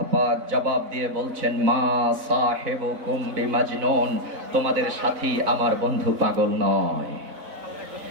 পাক জবাব দিয়ে বলছেন মা সাহিবুকুম বিমাজনুন, তোমাদের সাথী আমার বন্ধু পাগল নয়।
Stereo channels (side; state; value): left; late; 4.0 ms